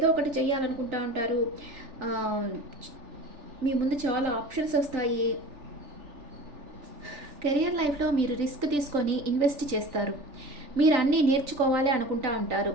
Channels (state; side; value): late; left; 3.4 ms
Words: ఒకటి చేయాలనుకుంటూ ఉంటారు. మీ ముందు చాలా ఆప్షన్స్ వస్తాయి. కెరియర్ లైఫ్లో మీరు రిస్క్ తీసుకొని ఇన్వెస్ట్ చేస్తారు. మీరు అన్నీ నేర్చుకోవాలి అనుకుంటా ఉంటారు.